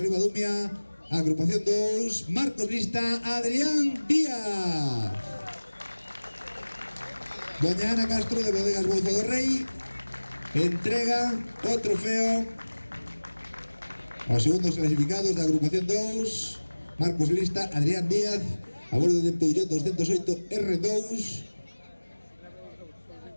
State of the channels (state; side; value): inverted; both; correlation -1.00